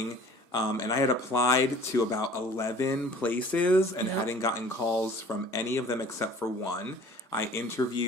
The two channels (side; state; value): both; normal; correlation 0.48